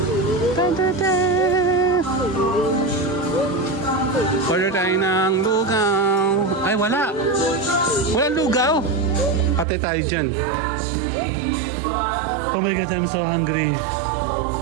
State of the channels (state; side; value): drops out; left; at 9.7 s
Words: Order tayo ng lugaw. Ay, wala. Walang lugaw. Patay tayo dyan. Oh my God, I'm so hungry.